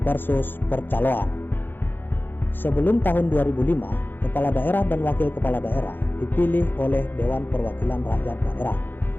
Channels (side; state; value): right; late; 0.096 ms